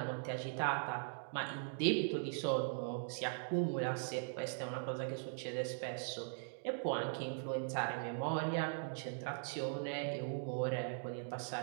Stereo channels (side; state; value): left; silent; digital silence